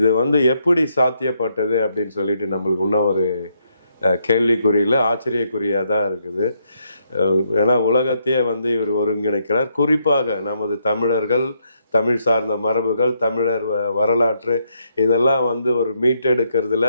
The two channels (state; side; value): inverted; both; correlation -0.76